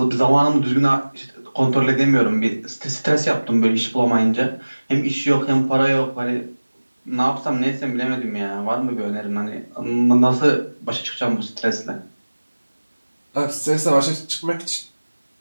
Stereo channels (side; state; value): both; inverted; correlation -1.00